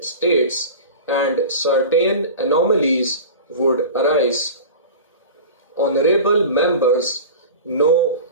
states and certain anomalies would arise. Honorable members know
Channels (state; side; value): inverted; both; correlation -0.34